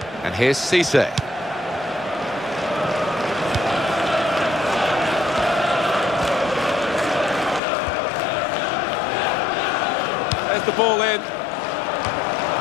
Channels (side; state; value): right; drops out; at 7.6 s